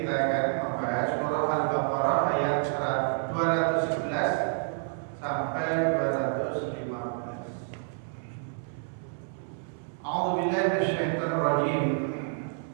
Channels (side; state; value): left; silent; 59 dB below the other